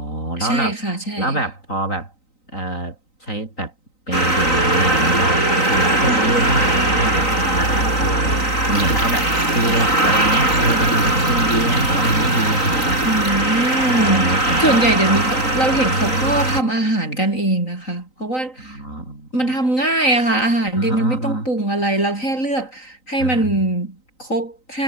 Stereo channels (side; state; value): right; late; 3.9 ms